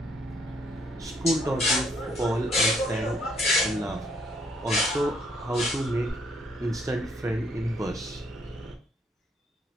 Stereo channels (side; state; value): both; normal; correlation 0.68